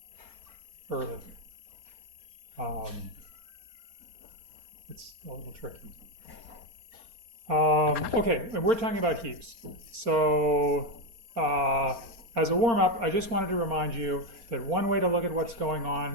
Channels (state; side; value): late; left; 4.3 ms